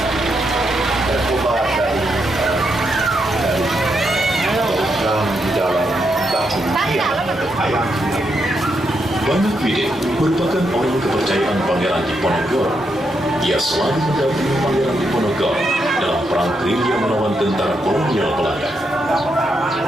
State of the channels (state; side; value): normal; both; correlation 0.81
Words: Banyak Widin merupakan orang kepercayaan Pangeran Diponegoro. Ia selalu mendampingi Pangeran Diponegoro dalam perang gerilya melawan tentara kolonial Belanda.